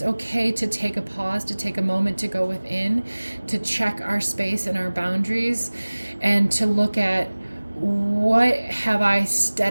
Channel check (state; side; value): inverted; both; correlation -1.00